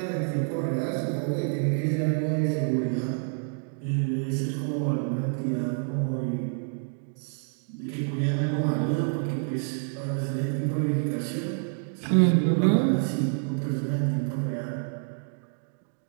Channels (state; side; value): silent; left; 59 dB below the other